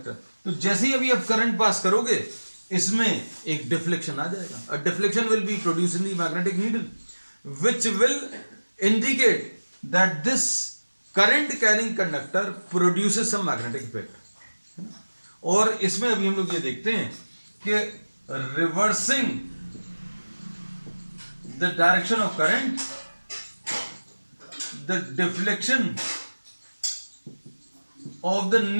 तो जैसे ही अभी आप करंट पास करोगे इसमें एक डिफ्लेक्शन आ जाएगा. A deflection will be produce in the magnetic needle which will indicate that this current carrying conductor produces some magnetic effect. और इसमें अभी हम लोग ये देखते हैं कि reversing the direction of current, the deflection of the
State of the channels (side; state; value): both; inverted; correlation -1.00